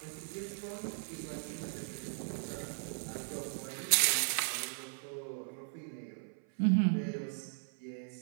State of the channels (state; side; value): silent; left; 53 dB below the other